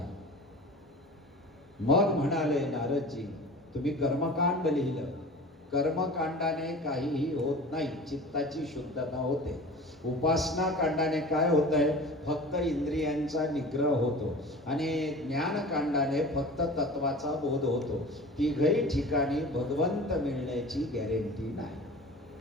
मग म्हणाले नारदजी, तुम्ही कर्मकांड लिहिलं, कर्मकांडाने काहीही होत नाही, चित्ताची शुद्धता होते. उपासना कांडाने काय होत आहे? फक्त इंद्रियांचा निग्रह होतो. आणि ज्ञानकांडाने फक्त तत्वाचा बोध होतो. तिघही ठिकाणी भगवंत मिळण्याची गॅरंटी नाही.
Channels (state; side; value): normal; both; correlation 0.38